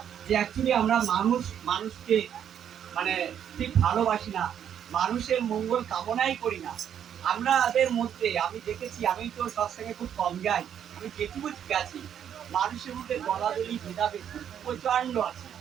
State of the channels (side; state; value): left; quieter; 9.2 dB